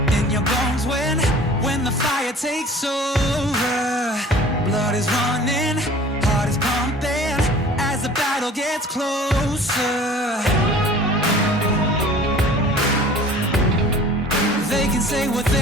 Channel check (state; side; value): normal; both; correlation 0.46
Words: in your bones when the fire takes over. Blood is running, heart is pumping as the battle gets closer. They can say what